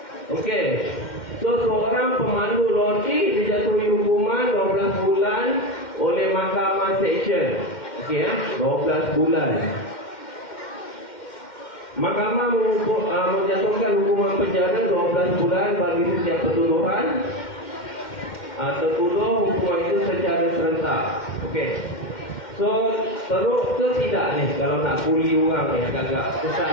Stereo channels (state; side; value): late; right; 2.1 ms